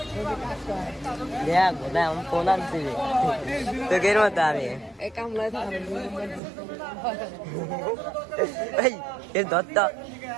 কিভাবে? দেখ বোধহয় আমি ফোন আনছি তো কের মতো আমি এই কামলায় এই এর দত্ত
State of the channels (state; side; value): drops out; left; at 6.4 s